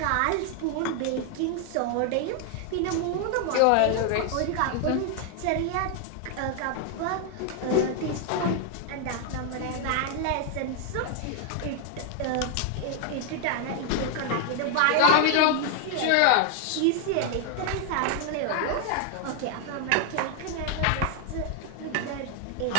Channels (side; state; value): both; different; correlation 0.00